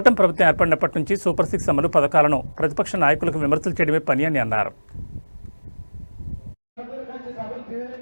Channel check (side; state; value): both; inverted; correlation -1.00